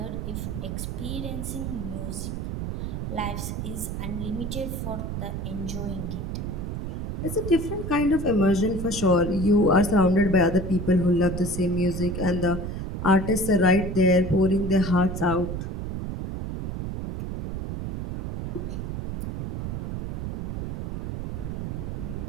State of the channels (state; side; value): noise; right; rumble, 5 dB below the sound